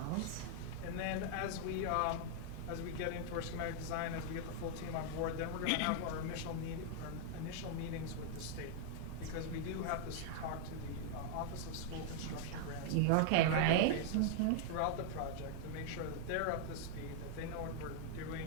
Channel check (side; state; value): both; different; correlation -0.01